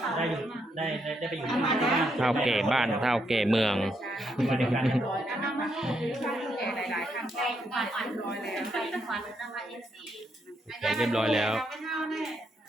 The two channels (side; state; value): both; normal; correlation 0.78